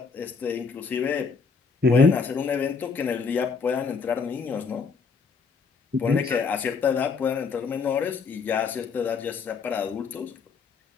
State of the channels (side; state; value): right; quieter; 5.2 dB